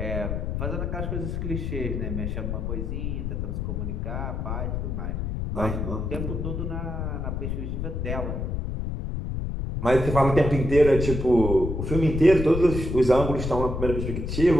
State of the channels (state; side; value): noise; left; rumble, 3 dB below the sound